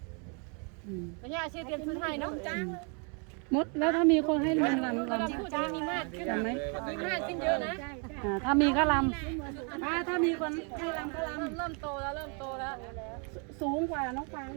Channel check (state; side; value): quieter; left; 37.3 dB